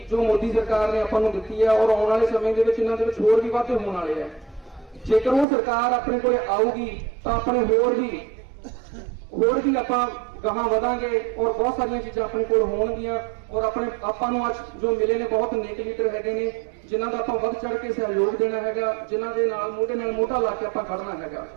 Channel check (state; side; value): drops out; left; at 5.5 s